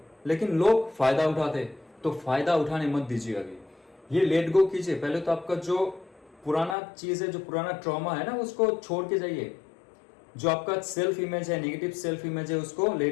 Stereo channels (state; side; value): drops out; right; at 6.8 s